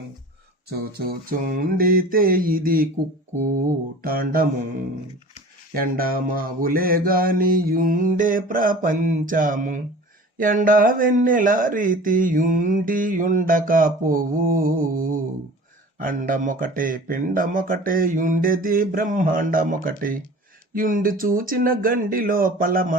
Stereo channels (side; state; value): both; normal; correlation 0.41